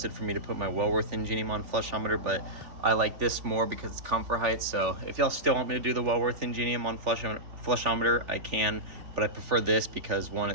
for me to put my Wellworth Ingenium on flushometer, but I like this more because it's comfort height. So if y'all still want me to do the Wellworth Ingenium on flushometer, I can, but I prefer this because one,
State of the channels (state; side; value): late; left; 3.5 ms